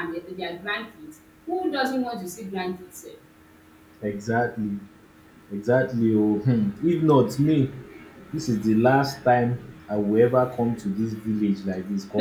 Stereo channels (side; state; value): both; identical; correlation 1.00